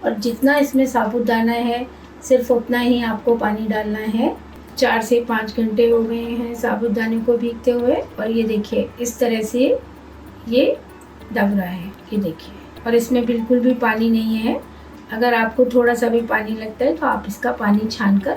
और जितना इसमें साबूदाना है सिर्फ उतना ही आपको पानी डालना है। 4 से 5 घंटे हो गए हैं साबूदाने को भीगते हुए और ये देखिए इस तरह से ये दब रहा है, ये देखिए, और इसमें बिल्कुल भी पानी नहीं है। अगर आपको थोड़ा सा भी पानी लगता है तो आप इसका पानी छान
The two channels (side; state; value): both; identical; correlation 1.00